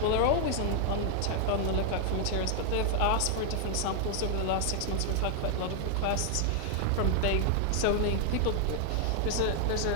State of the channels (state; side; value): different; both; correlation 0.00